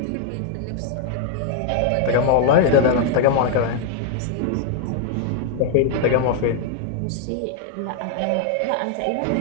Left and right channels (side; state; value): both; different; correlation 0.00